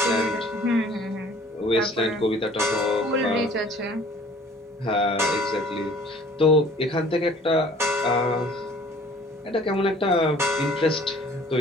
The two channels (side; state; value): both; normal; correlation 0.52